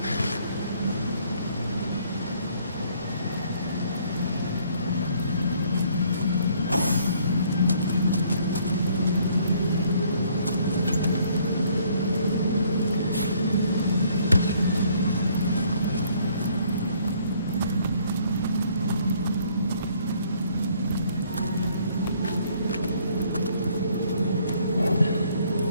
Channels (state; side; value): inverted; both; correlation -0.63